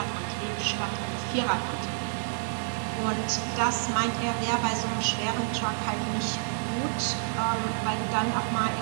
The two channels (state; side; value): silent; left; 59 dB below the other